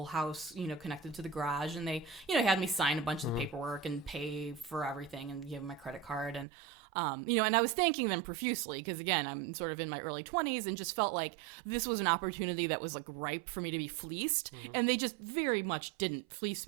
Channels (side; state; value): left; drops out; at 6.5 s